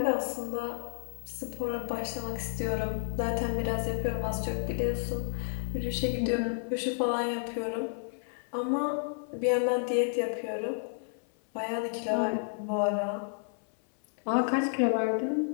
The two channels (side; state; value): right; silent; 57 dB below the other